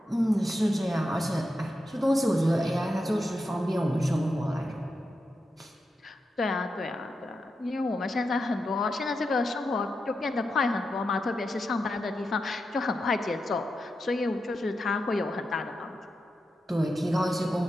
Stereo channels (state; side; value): normal; both; correlation 0.88